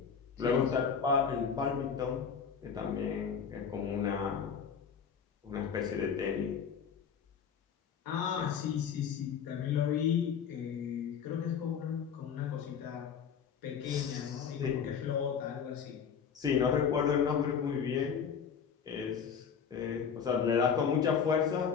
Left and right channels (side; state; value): right; quieter; 7.0 dB